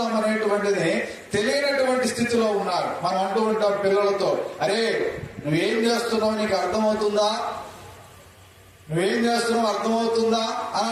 అనేటువంటిది తెలియనటువంటి స్థితిలో ఉన్నారు. మనం అంటూ ఉంటాం పిల్లలతో, అరే నువ్వేం చేస్తున్నావు నీకు అర్థమవుతుందా, నువ్వేం చేస్తున్నావు అర్థమవుతుందా అని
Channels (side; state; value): both; identical; correlation 1.00